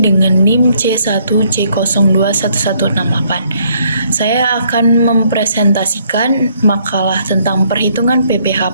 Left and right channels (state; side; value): inverted; both; correlation -0.67